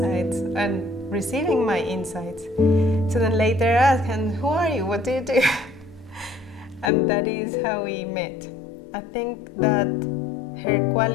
and receiving my insights. So then later I asked, and who are you? What do you do? And that is how we met. I think that her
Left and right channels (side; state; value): right; drops out; at 6.9 s